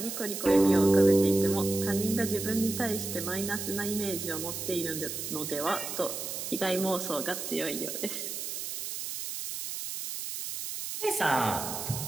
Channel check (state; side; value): noise; right; hiss, 6 dB below the sound